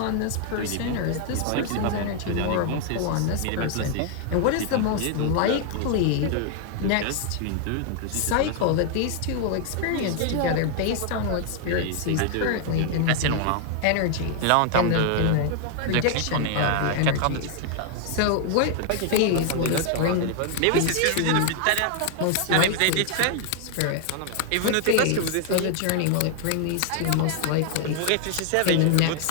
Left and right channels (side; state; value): both; different; correlation 0.00